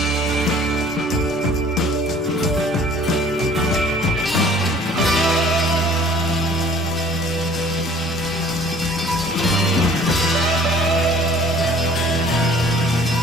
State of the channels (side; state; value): both; normal; correlation 0.53